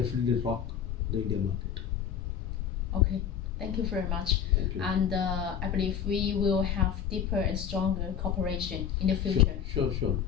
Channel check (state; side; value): quieter; right; 8.3 dB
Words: rock the India market. Okay, thank you very much. Thank you. And I believe we will have deeper and stronger cooperation in the future. Sure.